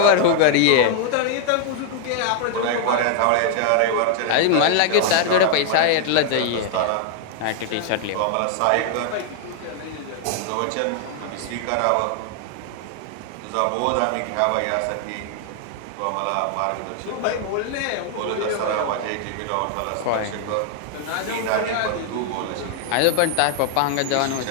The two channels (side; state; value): both; different; correlation 0.00